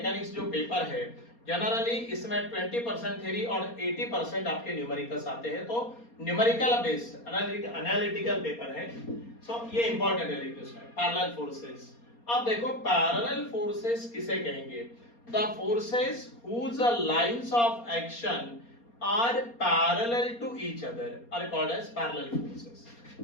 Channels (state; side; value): late; right; 4.3 ms